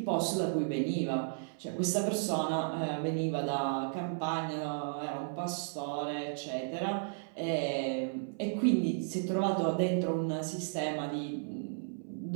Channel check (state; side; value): silent; left; 55 dB below the other